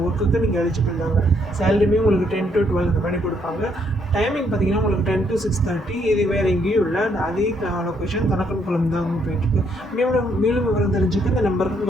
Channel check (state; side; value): normal; both; correlation 0.71